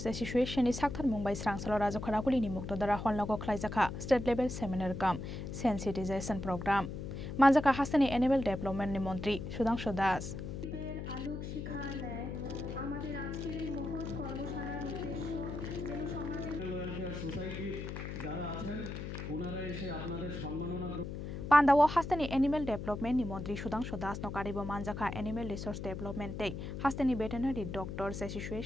Association is Sakthar Mumbai Srangsalo Rajakharakuli ni Muktodara Honlago Khlaijaka State Level Seminar Kam Sensitization Program Manjaka Hasteni Animal Development ni Montri Sudhanshu Das Pandawo Hasteni Animal Development ni Montri Sudhanshu Das nokaribo Manjaka Animal Resource Development Day Hasteni Veterinary Doctors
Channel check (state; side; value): noise; left; hum, 6 dB below the sound